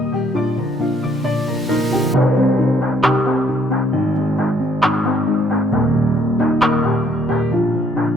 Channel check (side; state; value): both; normal; correlation 0.66